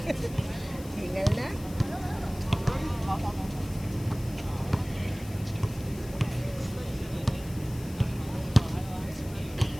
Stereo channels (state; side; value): noise; left; hiss, 18 dB below the sound